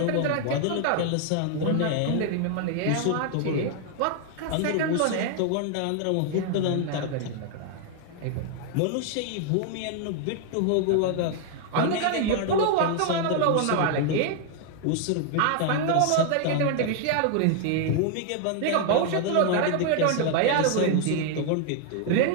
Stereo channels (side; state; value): both; different; correlation 0.00